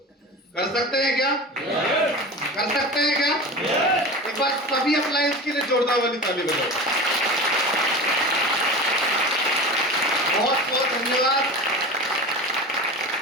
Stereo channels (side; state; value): both; normal; correlation 0.31